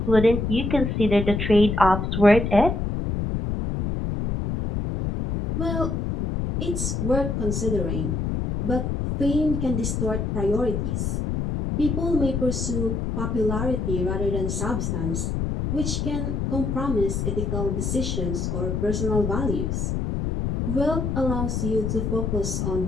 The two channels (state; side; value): noise; left; rumble, 1 dB below the sound